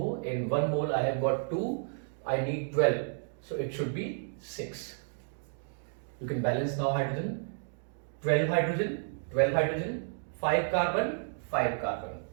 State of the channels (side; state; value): left; silent; digital silence